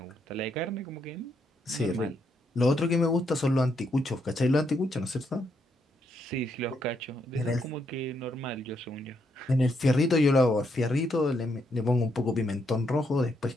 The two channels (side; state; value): both; normal; correlation 0.77